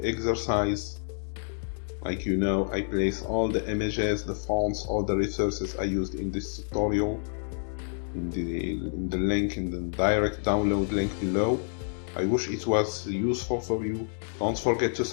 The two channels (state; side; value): silent; right; digital silence